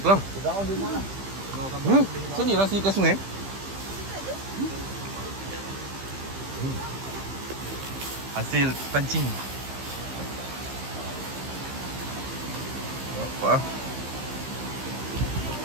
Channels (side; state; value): left; late; 15 ms